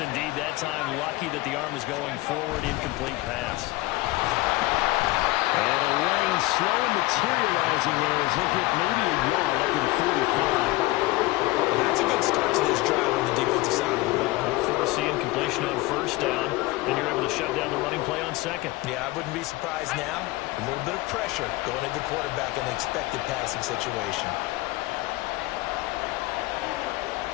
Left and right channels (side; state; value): right; quieter; 20.0 dB